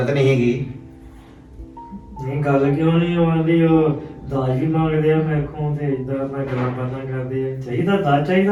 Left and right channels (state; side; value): identical; both; correlation 1.00